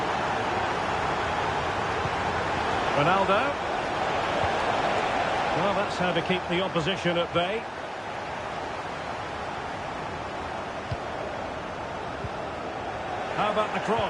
Ronaldo. Well, that's how to keep the opposition at bay. How about the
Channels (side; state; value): both; identical; correlation 1.00